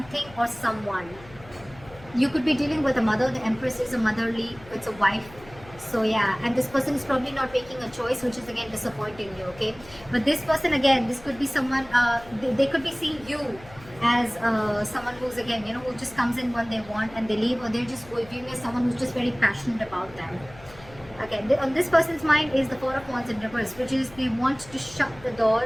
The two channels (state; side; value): noise; left; hum, 21 dB below the sound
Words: or someone. You could be dealing with a mother. The Empress is a motherly, it's a wife. So yeah, and this person is probably not making a choice, which is again disappointing you, okay? But this person, again, this could be someone, they could be seeing you as someone who's, again, you know, who just comes in when they want and they leave, or they're just viewing as someone who's just very passionate about them. Okay, on this person's mind is the Four of Wands in reverse, which is they want to shut the